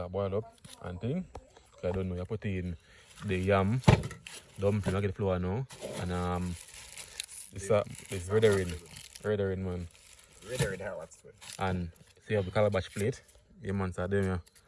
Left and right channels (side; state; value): both; identical; correlation 1.00